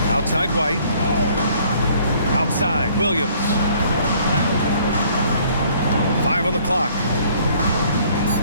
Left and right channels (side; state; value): both; inverted; correlation -0.60